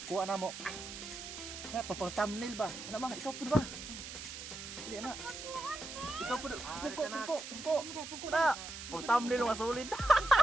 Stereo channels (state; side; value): noise; right; hiss, 9 dB below the sound